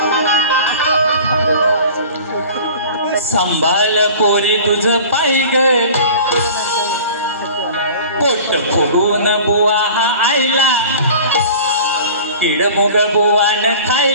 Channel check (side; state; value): both; inverted; correlation -0.41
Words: संभाळ पोरी तुझ पाय ग, पोट फुगून बुवा हा आईला, किडमुग बुवान